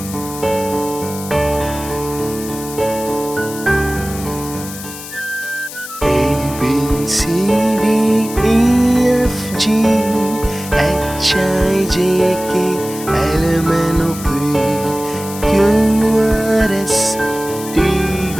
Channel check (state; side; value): noise; left; hiss, 12 dB below the sound